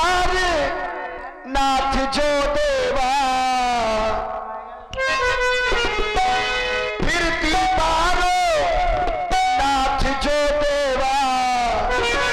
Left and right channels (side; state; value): both; identical; correlation 1.00